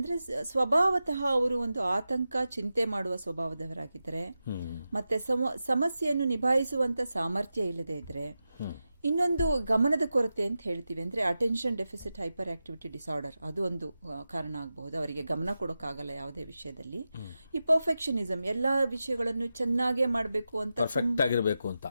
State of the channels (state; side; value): inverted; both; correlation -0.92